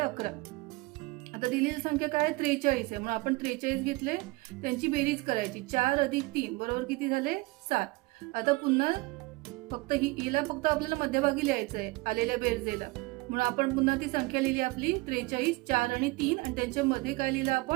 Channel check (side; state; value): left; quieter; 23.4 dB